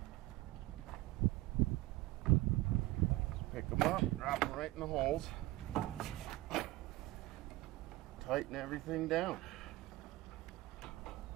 Just pick them up, drop them right in the holes, tighten everything down.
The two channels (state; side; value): quieter; left; 18.8 dB